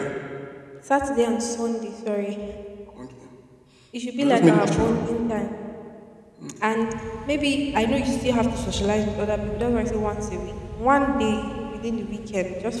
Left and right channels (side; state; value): both; identical; correlation 1.00